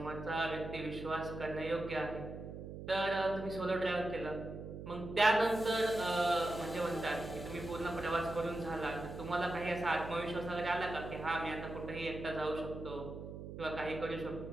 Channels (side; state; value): right; noise; hum, 9 dB below the sound